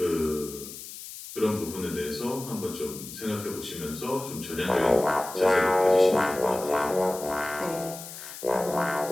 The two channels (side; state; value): left; noise; hiss, 12 dB below the sound